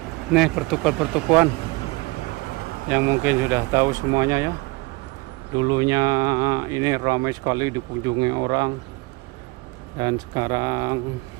Nih pertukuan yang mungkin sudah tahu semuanya ya. Dulunya ini ramai sekali dikunjungi orang, dan sekarang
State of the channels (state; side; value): quieter; left; 24.4 dB